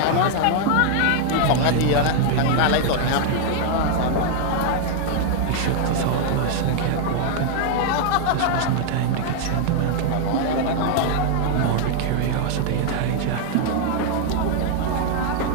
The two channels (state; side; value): different; both; correlation 0.00